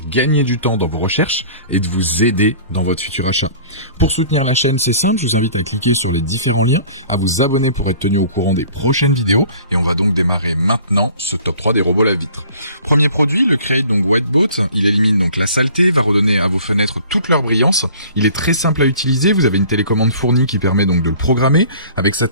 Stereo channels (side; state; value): both; inverted; correlation -0.48